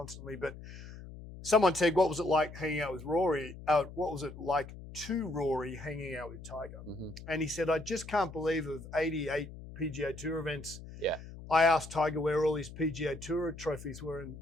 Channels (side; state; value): left; noise; hum, 14 dB below the sound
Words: But someone said, what was it like hanging out with Rory? What was it like to Rory hanging out with Tiger? Mm-hmm. And he said, I just can't believe of 88 PGA Tour events. Yeah. I asked Tiger where all his PGA Tour trophies were,